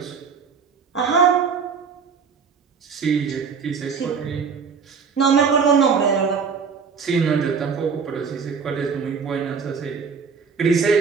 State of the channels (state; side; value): quieter; left; 5.8 dB